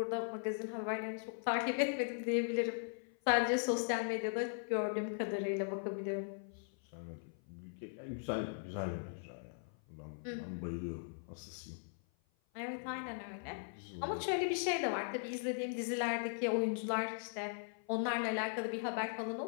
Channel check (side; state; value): right; silent; 52 dB below the other